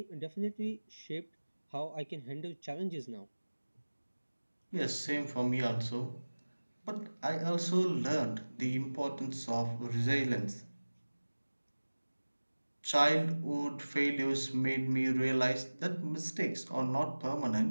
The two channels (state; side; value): inverted; both; correlation -1.00